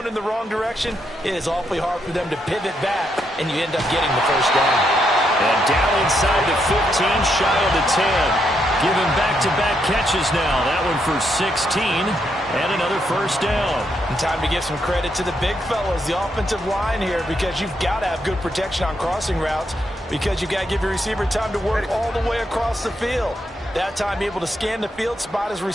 in the wrong direction, it is awfully hard for them to pivot back, and you end up getting the first down. And down inside the 15, shy of the 10. Giving back-to-back catches now. That one for 16 and another first down. And time to give some credit to the big fellas, the offensive line here, because you've got to have good protection on crossing routes, because you've got to give your receiver time to work all the way across the field. That time able to scan the field, spot his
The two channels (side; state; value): both; normal; correlation 0.78